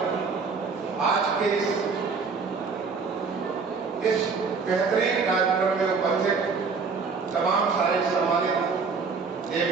आज के इस बेहतरीन कार्यक्रम में उपस्थित तमाम सारे सम्मानित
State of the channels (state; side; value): quieter; left; 5.0 dB